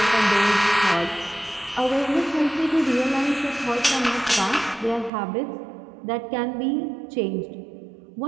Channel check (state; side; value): drops out; left; at 5.1 s